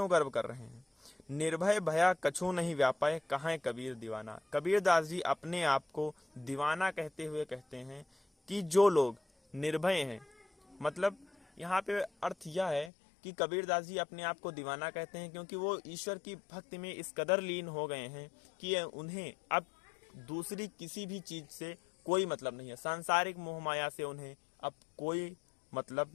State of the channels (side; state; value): right; drops out; at 12.9 s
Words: गर्व कर रहे हैं। निर्भय भया कछु नहीं व्यापाय, कहाँ कबीर दीवाना। कबीरदास जी अपने आप को दीवाना कहते हुए कहते हैं कि जो लोग निर्भय हैं, मतलब यहाँ पे अर्थ यह है कि कबीरदास जी अपने आप को दीवाना कहते हैं क्योंकि वो ईश्वर की भक्ति में इस कदर लीन हो गए हैं कि उन्हें अब दूसरी किसी भी चीज से कोई मतलब नहीं है, सांसारिक मोह माया से उन्हें अब कोई मतलब